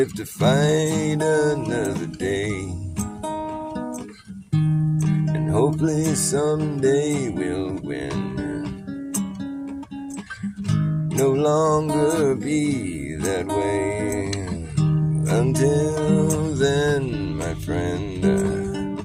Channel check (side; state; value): both; identical; correlation 1.00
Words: to fight another day. And hopefully someday we'll win. No longer be that way. Until then, my friend,